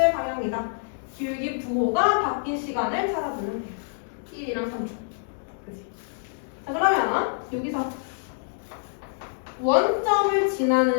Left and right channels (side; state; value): right; silent; digital silence